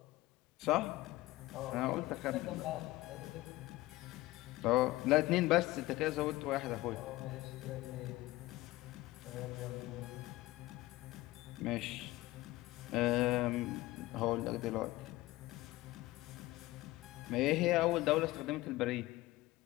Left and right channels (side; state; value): right; quieter; 18.5 dB